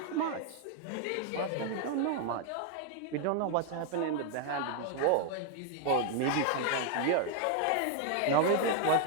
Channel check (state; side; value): different; both; correlation 0.00